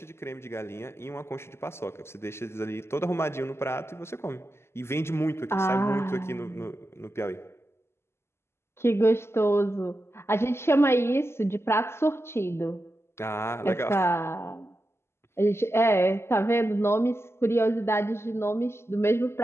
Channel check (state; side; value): late; right; 0.12 ms